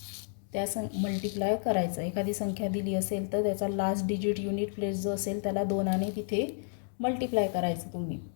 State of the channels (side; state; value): right; silent; 57 dB below the other